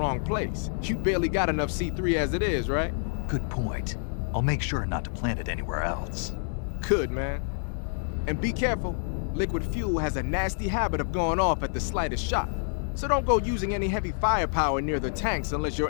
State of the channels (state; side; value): silent; right; digital silence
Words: place. You barely got enough C3 as it is, right? Good point. I'll make sure not to plant it anywhere else. Good, man. And be careful. Liquid fuel has a nasty habit of going off at the slightest shock. So don't go using any heavy firepower near the tanks unless you're